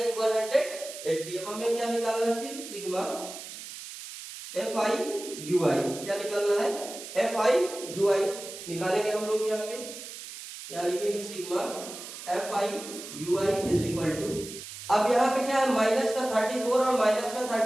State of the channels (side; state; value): right; noise; hiss, 12 dB below the sound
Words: 180। अब हमें क्या निकालना है, सिर्फ सिग्मा एफ आई यू आई, क्या निकालना है एफ आई यू आई निकालेंगे हम लोग। यहाँ पे क्या लिखेंगे, sigma F I U I is equal to, अब यहाँ पे क्या है माइनस का 34 और माइनस का